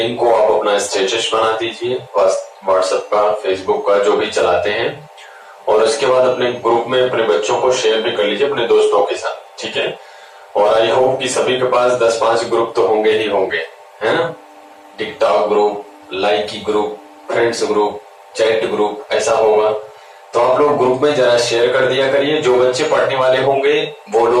को आप अपना स्टेटस बना दीजिए, व्हाट्सएप का, फेसबुक का, जो भी चलाते हैं, और उसके बाद अपने ग्रुप में अपने बच्चों को शेयर भी कर लीजिए अपने दोस्तों के साथ, ठीक है। और आई होप कि सभी के पास 10-5 ग्रुप तो होंगे ही होंगे, है ना। TikTok group, Likee group, friends group, chat group, ऐसा होगा तो आप लोग ग्रुप में जरा शेयर कर दिया करिए। जो बच्चे पढ़ने वाले होंगे वो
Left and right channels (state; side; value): identical; both; correlation 1.00